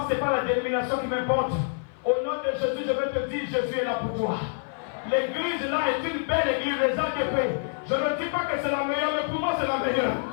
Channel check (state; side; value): silent; right; 55 dB below the other